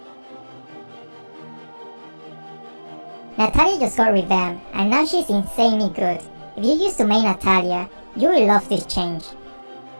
Natalia just got revamped and now she's insanely good. If you used to main Natalia, you will love this change.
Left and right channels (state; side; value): inverted; both; correlation -1.00